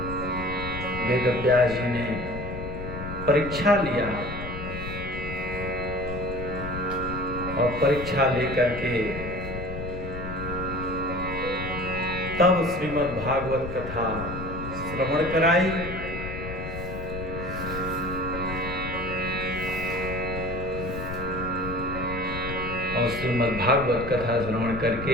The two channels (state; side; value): noise; left; rumble, 8 dB below the sound